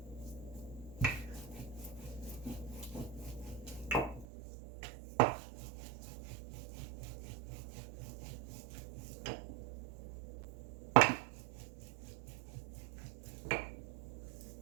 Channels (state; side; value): drops out; left; at 4.2 s